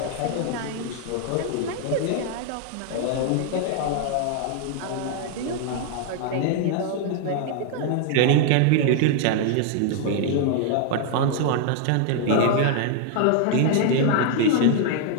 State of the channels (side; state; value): both; different; correlation 0.00